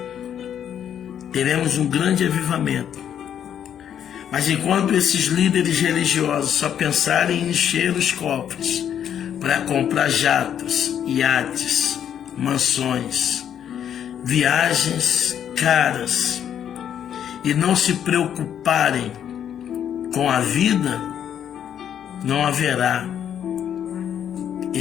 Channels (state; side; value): quieter; right; 9.4 dB